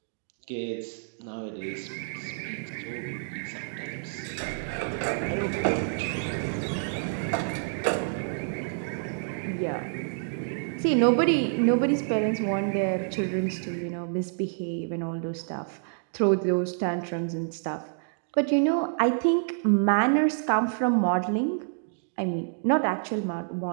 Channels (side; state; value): left; silent; digital silence